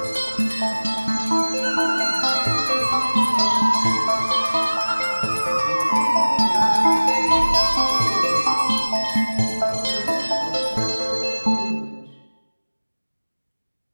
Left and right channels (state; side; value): inverted; both; correlation -1.00